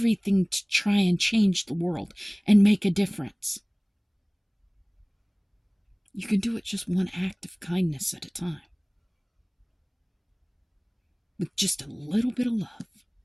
to try and change the world and make a difference. You can do it just one act of kindness at a time. With just a little bit of love.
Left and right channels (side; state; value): both; identical; correlation 1.00